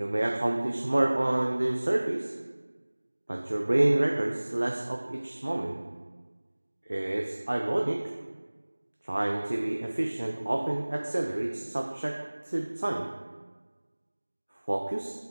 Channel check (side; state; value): both; inverted; correlation -1.00